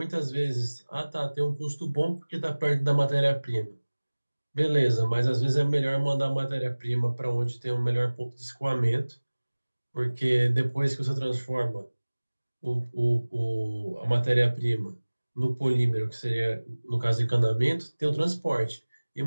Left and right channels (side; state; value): both; inverted; correlation -1.00